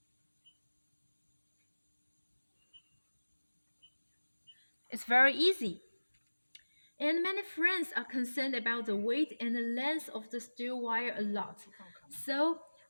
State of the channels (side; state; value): both; inverted; correlation -1.00